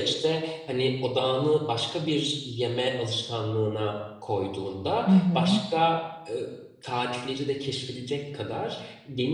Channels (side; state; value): both; identical; correlation 1.00